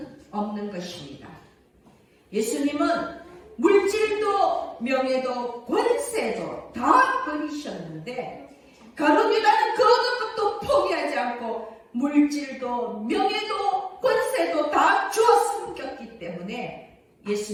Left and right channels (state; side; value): identical; both; correlation 1.00